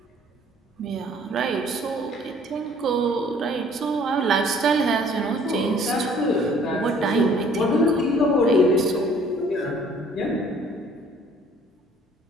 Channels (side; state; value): both; normal; correlation 0.56